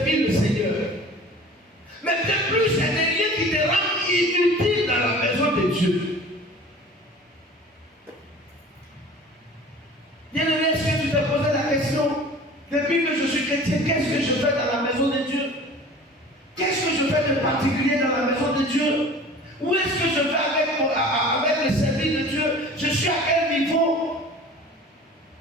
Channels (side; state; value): both; normal; correlation 0.43